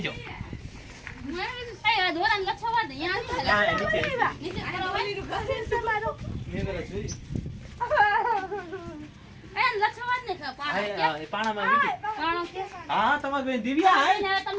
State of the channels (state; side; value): identical; both; correlation 1.00